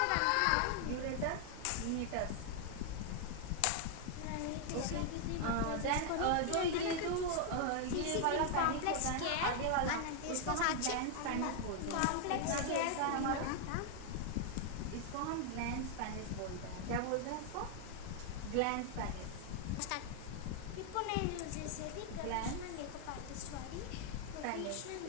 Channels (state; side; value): different; both; correlation 0.00